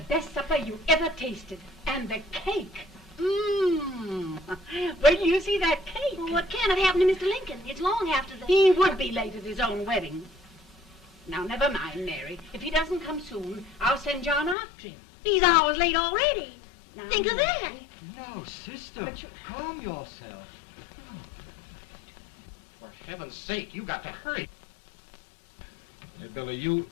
supper you ever tasted. And the cake. Mmm. Wait till you see that cake. Well, what can have happened to Mr. Lincoln? It's long after the... He would be late at his own wedding. Now, never mind, Mary. If he doesn't come soon, I'll send John after him. He's hours late already. Now, Think of that. No, sister, But calm yourself. heaven's sake, you got to hurry. Hey, Billy, you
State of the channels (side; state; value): right; drops out; at 14.6 s